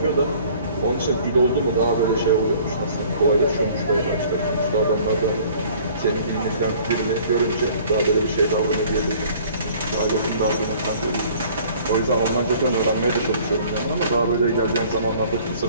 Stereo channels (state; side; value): inverted; both; correlation -0.53